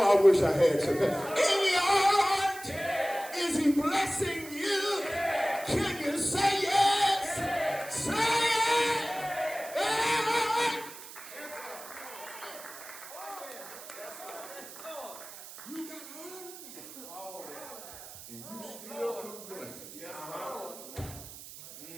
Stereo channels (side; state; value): right; noise; hiss, 14 dB below the sound